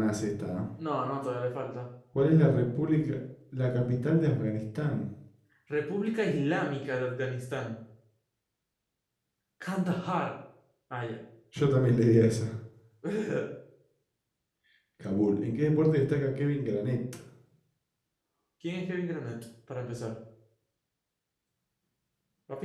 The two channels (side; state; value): both; identical; correlation 1.00